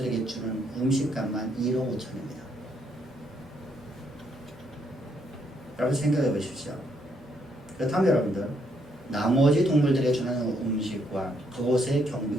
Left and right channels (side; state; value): both; normal; correlation 0.73